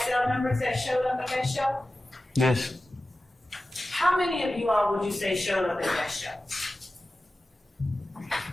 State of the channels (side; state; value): both; normal; correlation 0.95